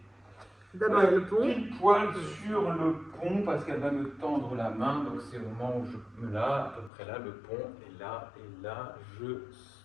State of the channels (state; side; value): drops out; right; at 6.9 s